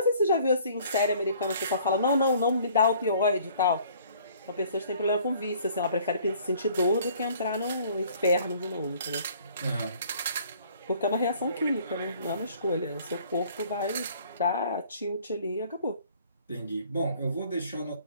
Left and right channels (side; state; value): both; inverted; correlation -0.56